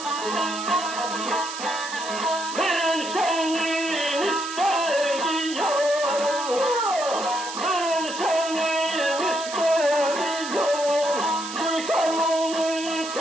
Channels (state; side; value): noise; right; hiss, 9 dB below the sound